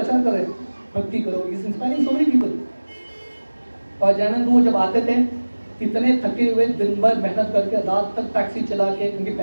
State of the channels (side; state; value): both; inverted; correlation -1.00